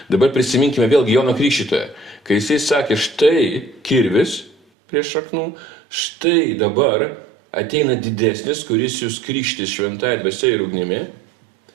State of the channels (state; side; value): drops out; left; at 4.5 s